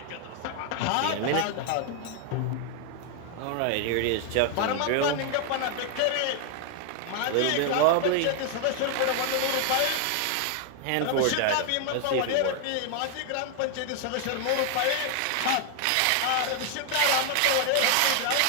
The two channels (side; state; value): both; different; correlation 0.00